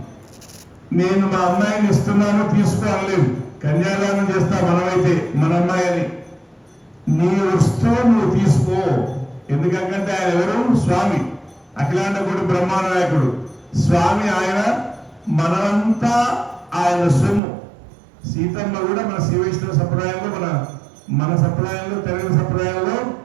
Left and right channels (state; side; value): drops out; left; at 17.4 s